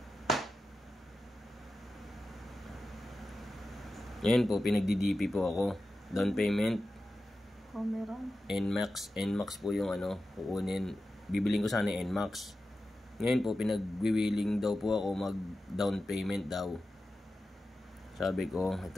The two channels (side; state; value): both; normal; correlation 0.93